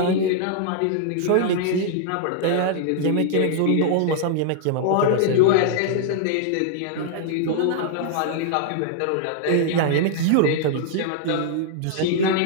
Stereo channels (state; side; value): different; both; correlation -0.01